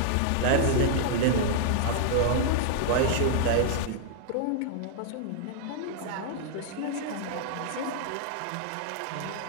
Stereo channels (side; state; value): both; different; correlation -0.01